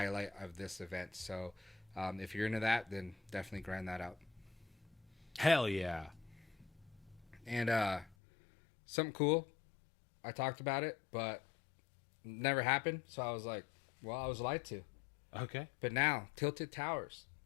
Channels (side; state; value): right; drops out; at 8.2 s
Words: of this event. So, if you're into that, then definitely grind that out. hell yeah. And something cool, I talked about it, but never happened. So I was like, well, I was lied to. Okay. But now, Tilted Towers